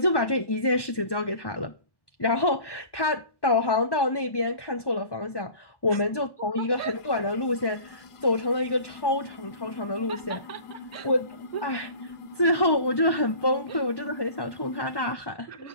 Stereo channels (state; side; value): late; right; 1.1 ms